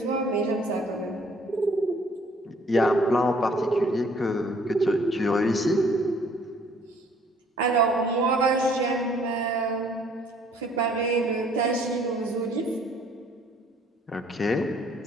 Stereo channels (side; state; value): both; normal; correlation 0.60